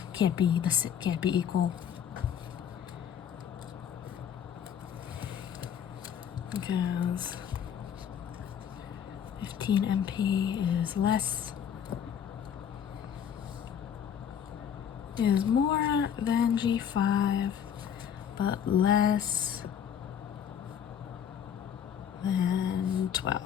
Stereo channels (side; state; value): right; quieter; 8.5 dB